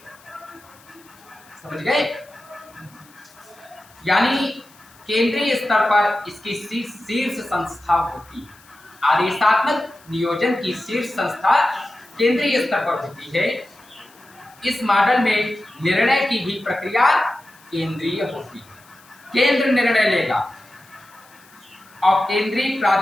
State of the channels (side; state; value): left; noise; hiss, 27 dB below the sound